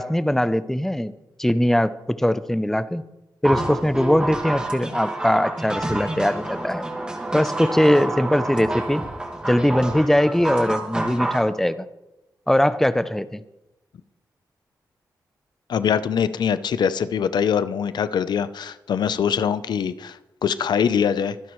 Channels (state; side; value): normal; both; correlation 0.89